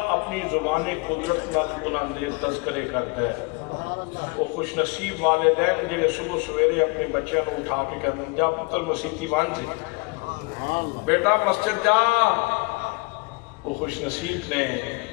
اپنی زبان قدرت نال انہوں دے تذکرے کرتا ہے۔ وہ خوش نصیب والدین جڑے صبح سویرے اپنے بچوں کو اٹھا کے کہتے ہیں جا پتر مسیتی بن جی، بیٹا مسجد جا۔ وہ خوش نصیب نے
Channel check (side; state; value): right; quieter; 28.3 dB